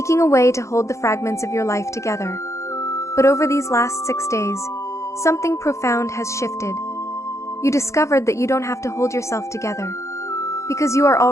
a way to hold the fragments of your life together. But over these last 6 days, something profound has shifted. You discovered that you don't have to hold yourself together, because you are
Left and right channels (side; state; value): right; late; 0.14 ms